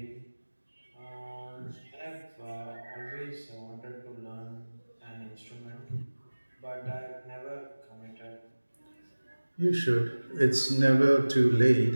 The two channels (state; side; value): inverted; both; correlation -1.00